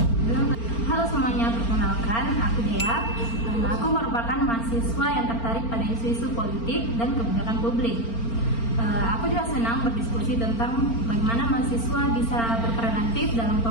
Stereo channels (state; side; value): late; right; 4.4 ms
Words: Halo semuanya, perkenalkan, aku Dea. Aku merupakan mahasiswa yang tertarik pada isu-isu politik dan kebijakan publik. Aku juga senang berdiskusi tentang bagaimana mahasiswa bisa berperan aktif dalam